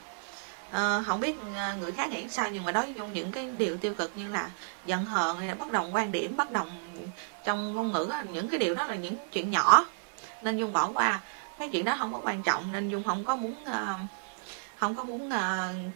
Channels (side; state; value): left; silent; digital silence